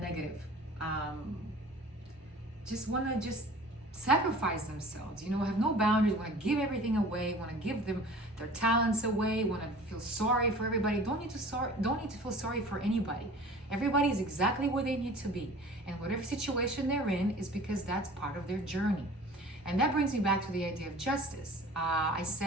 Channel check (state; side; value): normal; both; correlation 0.44